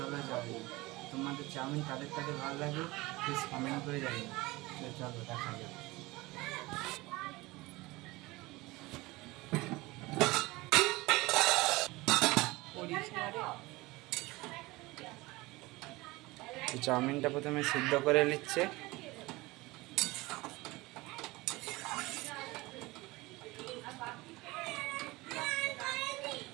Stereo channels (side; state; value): left; quieter; 21.3 dB